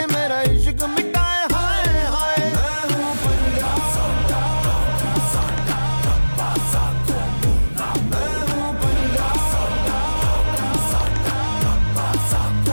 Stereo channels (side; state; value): both; inverted; correlation -1.00